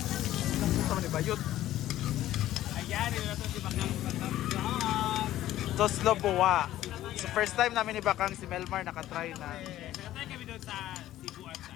Sama ni Bayot. Ayan, ito na ito si Bakang. Toslo Buwa. So first time namin ni Bakang si Melmar nakatry na. Nakatay kami doon sa Cebu at sa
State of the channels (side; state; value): right; quieter; 13.9 dB